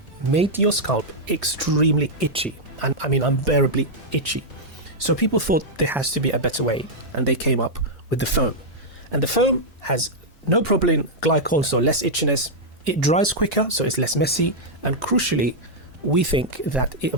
made your scalp extremely itchy, and I mean unbearably itchy. So people thought there has to be a better way, and they came up with the foam. And the foam has no propylene glycol, so less itchiness. It dries quicker, so it's less messy, and crucially, we think that it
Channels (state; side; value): normal; both; correlation -0.05